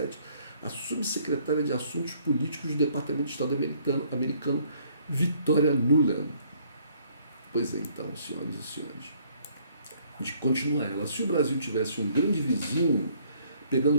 a subsecretária de Assuntos Políticos do Departamento de Estado americano, Victoria Nuland. Pois é, então, senhoras e senhores, de continuar ela, se o Brasil tivesse um grande vizinho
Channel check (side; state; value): both; inverted; correlation -0.63